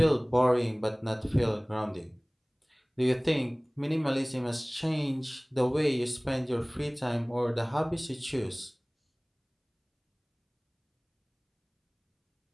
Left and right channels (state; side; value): identical; both; correlation 1.00